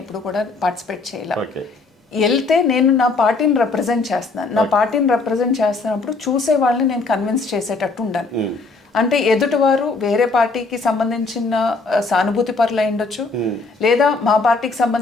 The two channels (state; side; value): quieter; right; 3.8 dB